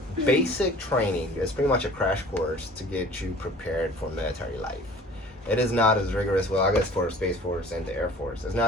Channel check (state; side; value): normal; both; correlation 0.47